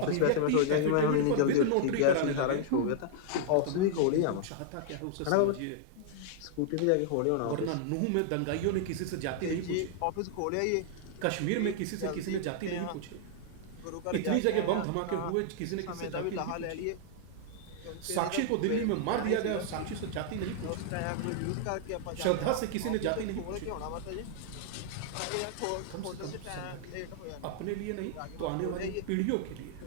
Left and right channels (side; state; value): both; different; correlation -0.01